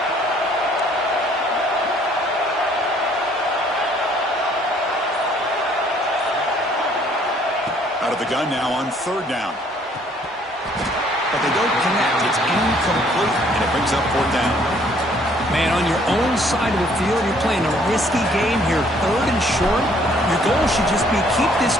Out of the gun now on 3rd down. But they don't connect. It's incomplete, and it brings up 4th down. Man, on your own side of the field, you're playing a risky game here. 3rd and short. Your goal should just be keep this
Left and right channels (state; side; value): normal; both; correlation 0.62